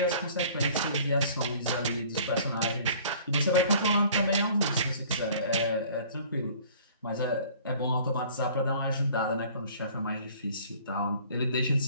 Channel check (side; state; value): both; inverted; correlation -0.51